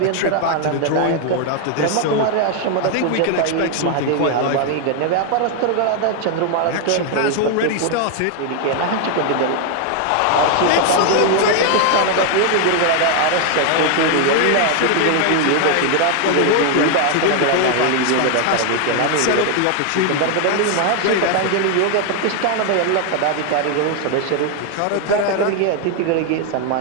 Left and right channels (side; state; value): both; different; correlation 0.00